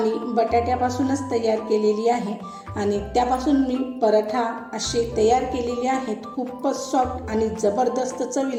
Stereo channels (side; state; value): both; identical; correlation 1.00